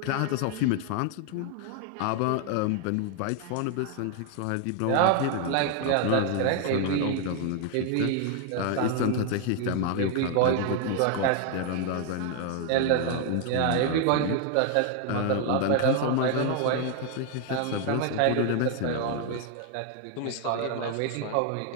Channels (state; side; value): different; both; correlation 0.00